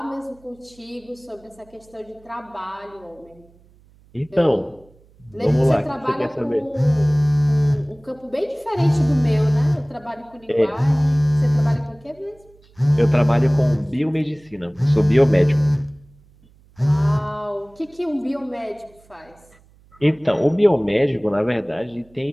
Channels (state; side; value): noise; right; hum, 29 dB below the sound